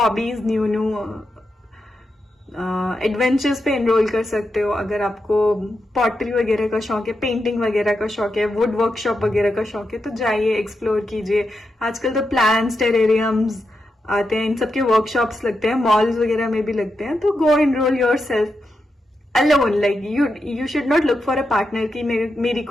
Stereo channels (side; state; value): both; normal; correlation 0.87